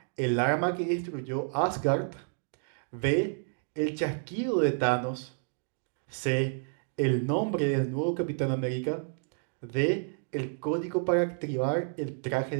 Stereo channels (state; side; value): silent; left; digital silence